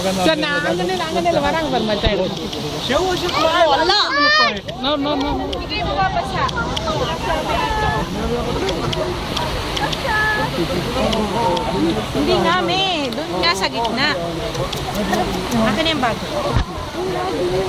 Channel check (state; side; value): identical; both; correlation 1.00